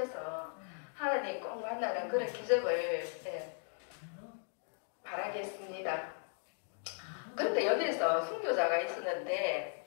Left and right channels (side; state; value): right; silent; 53 dB below the other